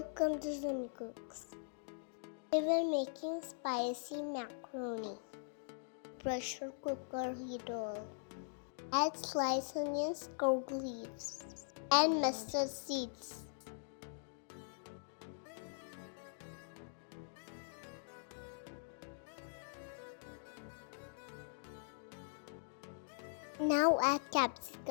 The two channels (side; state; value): right; silent; digital silence